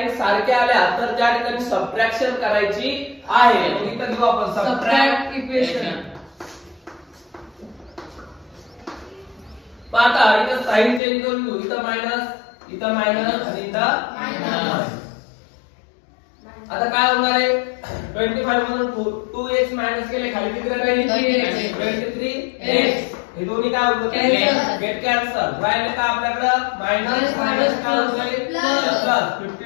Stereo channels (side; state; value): right; drops out; at 11.0 s